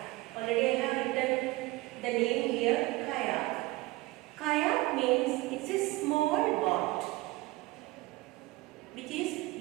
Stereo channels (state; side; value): quieter; left; 20.6 dB